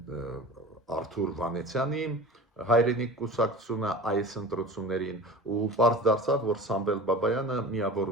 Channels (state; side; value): normal; both; correlation 0.37